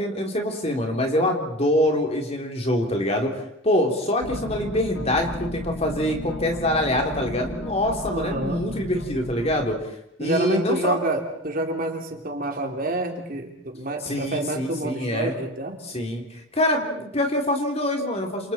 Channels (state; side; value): normal; both; correlation 0.32